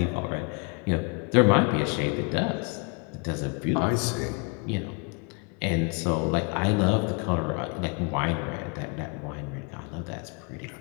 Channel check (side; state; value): right; quieter; 32.5 dB